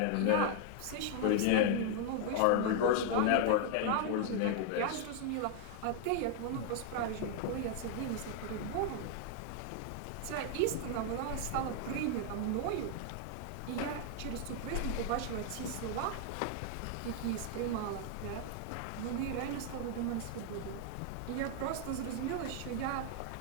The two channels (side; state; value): both; different; correlation 0.00